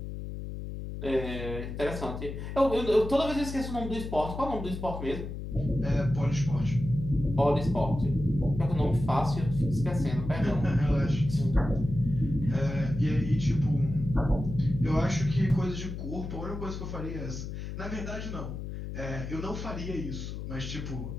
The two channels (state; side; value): noise; left; hum, 7 dB below the sound